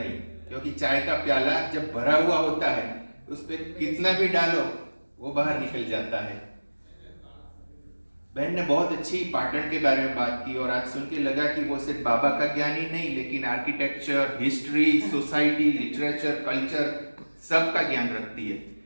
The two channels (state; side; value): inverted; both; correlation -1.00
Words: क्योंकि चाय का प्याला जब भरा हुआ होता है, उस पर कितना भी डालो वो बाहर निकल जाता है। बहन ने बहुत अच्छी पाटन के बारे में बात की, और आज सुन के लगा कि वो सिर्फ बाबा का ज्ञान ही नहीं, लेकिन architecture, history, society, literature, culture, सब का ज्ञान रखती है।